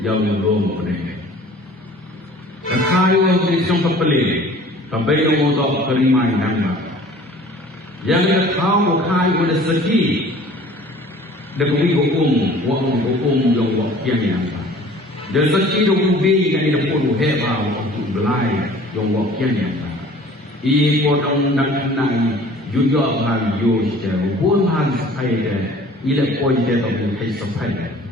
jauh yang rom ni. Dakhan yang di tong pepeli kebaik yang tak kerimai nang yang tahu kai udah sedih dekat hukum yang wakya ni nang. Dan sekali ubi yang ini pun hebat untuk belai yang wakil yang ini pun nak juga hal jujur pun hal sepai dah ini pun dia tak boleh sepai dah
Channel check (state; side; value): normal; both; correlation 0.48